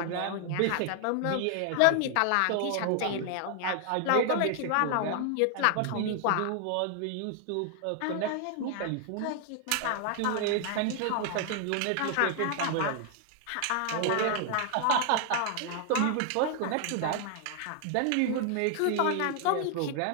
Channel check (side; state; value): both; different; correlation 0.00